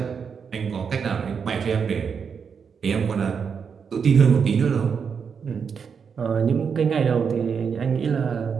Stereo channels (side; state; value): left; quieter; 6.4 dB